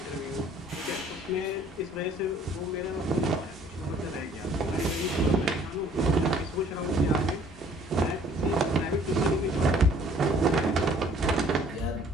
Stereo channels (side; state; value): both; normal; correlation 0.57